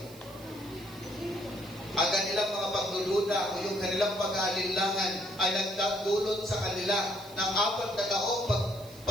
Ang kanilang mga pagdududa o yung kanilang pag-aalinlangan ay nagdadulot sa kanila ng 4 na taong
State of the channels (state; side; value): noise; right; hiss, 21 dB below the sound